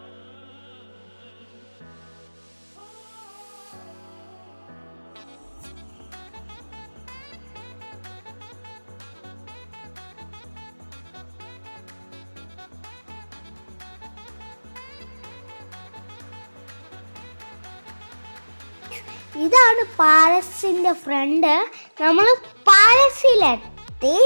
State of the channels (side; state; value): both; inverted; correlation -1.00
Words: ഇതാണ് പാലസിൻ്റെ ഫ്രണ്ട്. നമ്മൾ പാലസിലെത്തി.